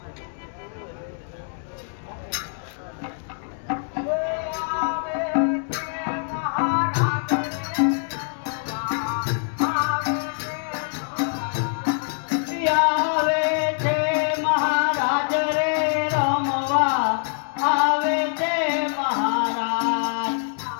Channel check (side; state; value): right; silent; 62 dB below the other